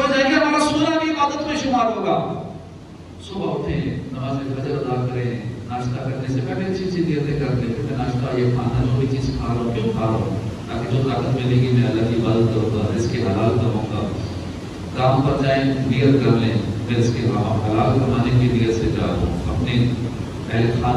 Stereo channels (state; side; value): identical; both; correlation 1.00